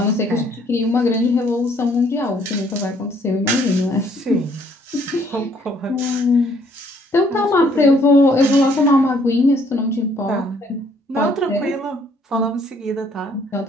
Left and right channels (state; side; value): normal; both; correlation 0.64